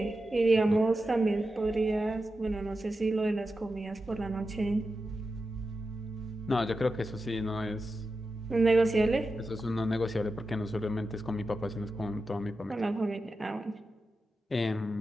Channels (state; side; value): normal; both; correlation 0.91